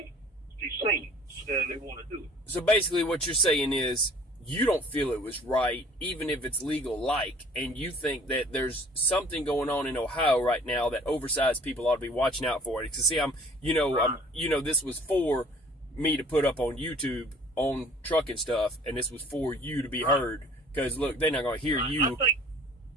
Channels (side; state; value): both; normal; correlation 0.52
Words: see they want to do it. So basically, what you're saying is, you don't feel it was right, even if it's legal-like, and you think that there's something going on in Ohio right now that oversized people ought to be watching out for it. Because see, this was for me to put up on YouTube on trucking stuff, and this was for you to be heard. Because look, they're not going to hear you.